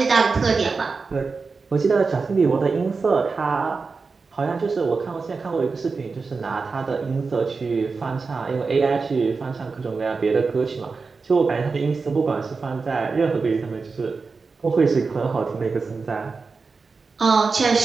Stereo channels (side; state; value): left; quieter; 4.5 dB